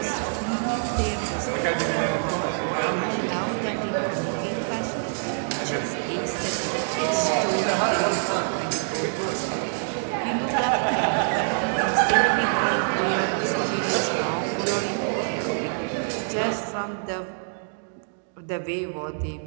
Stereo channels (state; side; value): silent; left; 61 dB below the other